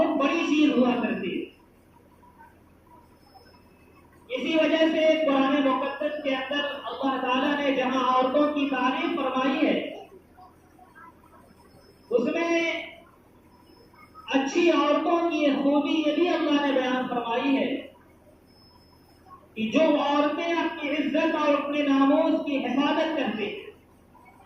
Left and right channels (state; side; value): identical; both; correlation 1.00